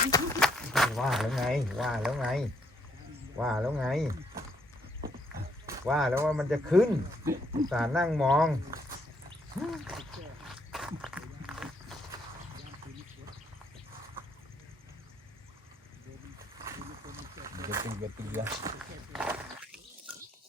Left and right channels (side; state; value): both; normal; correlation 0.71